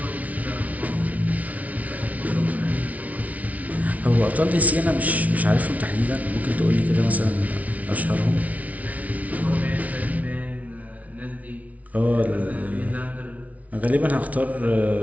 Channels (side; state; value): left; late; 0.070 ms